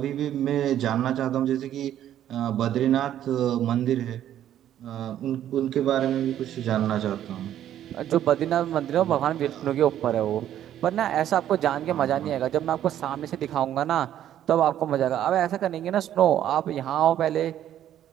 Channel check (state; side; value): quieter; left; 11.3 dB